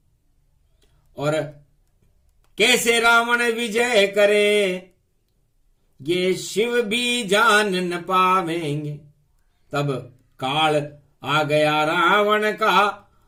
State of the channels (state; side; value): identical; both; correlation 1.00